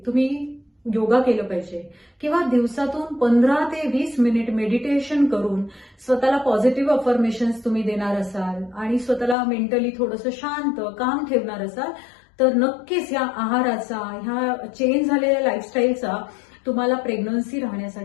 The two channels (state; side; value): drops out; right; at 9.3 s